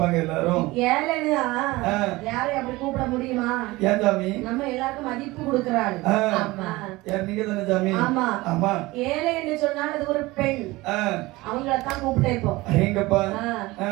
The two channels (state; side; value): quieter; left; 20.6 dB